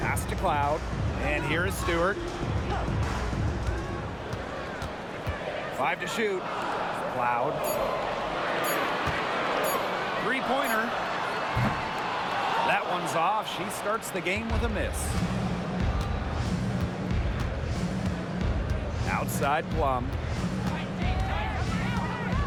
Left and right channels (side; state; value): both; identical; correlation 1.00